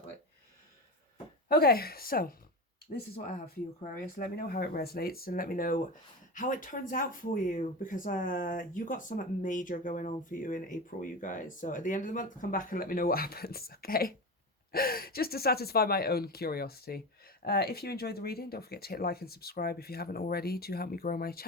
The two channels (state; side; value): normal; both; correlation 0.24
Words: way. Okay, so this is what I have for you, Aquarius. Let me know how it resonates and let me know how it turns out for you, because you got something major going on for you in April, you guys. So at the end of the month, come back and let me know what happens, okay? Just to satisfy my own curiosity. If you enjoyed the reading, don't forget to hit like and subscribe if you haven't already to help me grow my